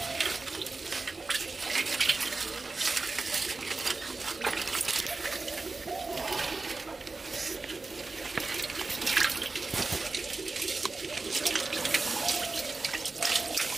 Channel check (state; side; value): quieter; left; 3.7 dB